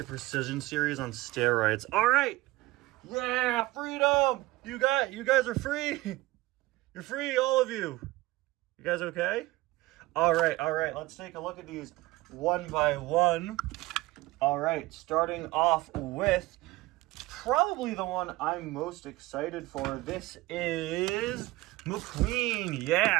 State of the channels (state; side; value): quieter; left; 19.4 dB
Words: Precision series on steroids. All right. Yeah, freedom. You guys are free. You're free, all of you. You guys okay? All right. Let's take a look at these one by one. All right, starting off with probably the one I'm most excited for. This is McQueen.